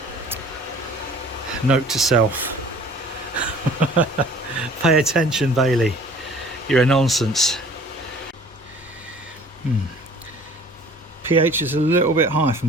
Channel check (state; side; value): normal; both; correlation 0.49